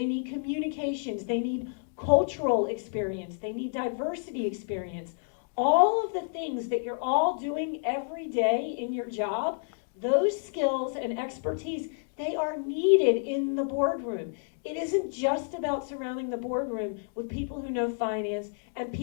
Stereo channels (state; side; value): silent; right; digital silence